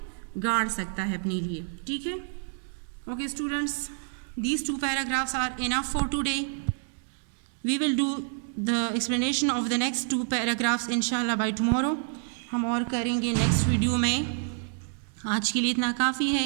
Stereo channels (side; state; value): left; silent; 59 dB below the other